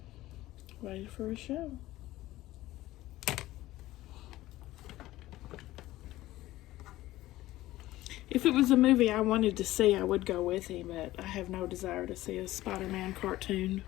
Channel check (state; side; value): quieter; right; 16.4 dB